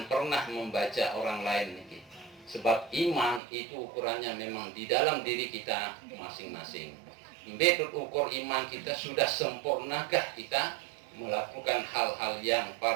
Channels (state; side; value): drops out; left; at 3.4 s